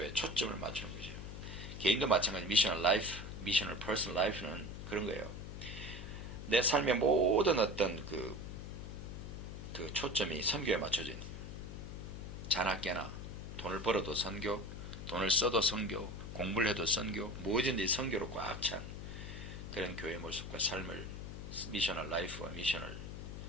초점을 맞추는 거죠. 개인도 마찬가지 미셔널 라이프, 미셔널 퍼스널 라이프는 그런 거예요. 내 삶의 모든 어떤 그 초점이 선교에 맞춰져 있는 거예요. 자나깨나 돈을 벌어도 선교, 돈을 써도 선교, 공부를 해도 선교, 뭐든지 선교로 꽉 찬 그런 교회의 모습과 삶을 미셔널 라이프와 미셔널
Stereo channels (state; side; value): noise; left; hum, 8 dB below the sound